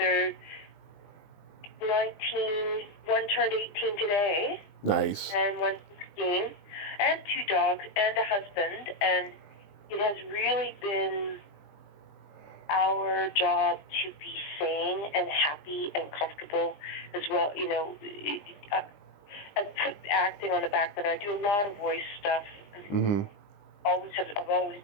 19, one turned 18 today. Nice. And one's 16, and 2 dogs, and a husband, and it has really been our job to be sane and happy and comfortable as well. I put acting on the back burner. I do a lot of voice stuff. Mm-hmm. I've always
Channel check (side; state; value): right; late; 20 ms